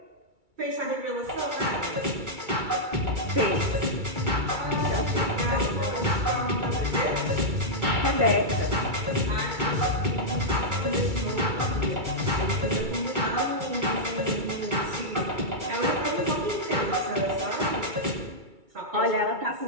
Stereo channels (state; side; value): late; left; 2.3 ms